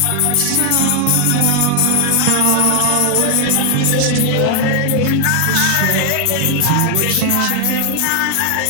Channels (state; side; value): different; both; correlation 0.00